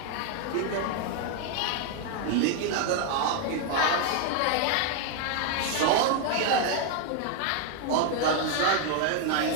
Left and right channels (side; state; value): both; different; correlation 0.01